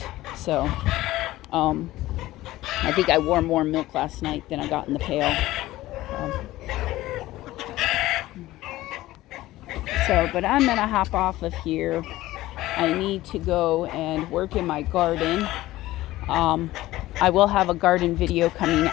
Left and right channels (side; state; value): right; quieter; 16.6 dB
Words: So I think I wore more milk last night than I got in the pail. But I'm gonna hop off of here. I need to go and work in my garden. I will have a garden video coming